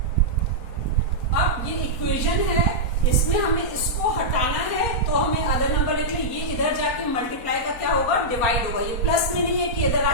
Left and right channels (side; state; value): right; late; 4.3 ms